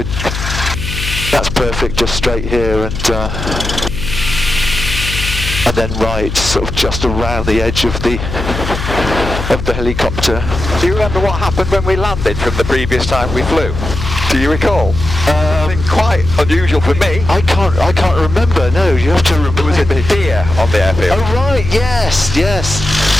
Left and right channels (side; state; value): left; noise; hum, 6 dB below the sound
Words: that's perfect, just straight here and then right, sort of just around the edge of the helicopter. Do you remember what happened when we landed from the previous time we flew? Do you recall? Something quite unusual for me. I can't remember. No, you have to remember. There was a deer on the airfield. Oh right, yes.